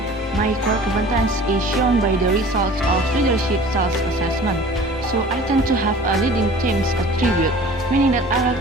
my core competence is shown by the results of leadership self-assessment. So I tend to have a leading team's attribute, meaning that I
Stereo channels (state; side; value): normal; both; correlation 0.45